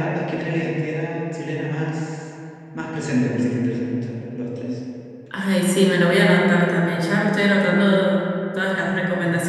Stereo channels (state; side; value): identical; both; correlation 1.00